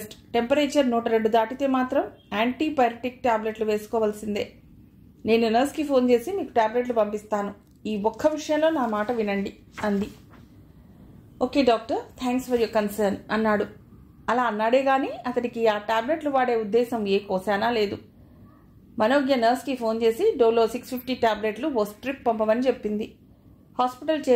టెంపరేచర్ 102 దాటితే మాత్రం యాంటీపైరటిక్ టాబ్లెట్లు వేసుకోవాల్సిందే. నేను నర్స్కి ఫోన్ చేసి మీకు టాబ్లెట్లు పంపిస్తాను. ఈ ఒక్క విషయంలో నా మాట వినండి అంది. Okay doctor, thanks for your concern అన్నాడు. అలా అన్నాడే గాని అతడికి ఆ టాబ్లెట్లు వాడే ఉద్దేశం ఏ కోసానా లేదు. మనోజ్ఞ నర్స్కి ఫోన్ చేసి డోలో 650 టాబ్లెట్లు ఓ స్ట్రిప్ పంపమని చెప్పింది. హాస్పిటల్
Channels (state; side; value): identical; both; correlation 1.00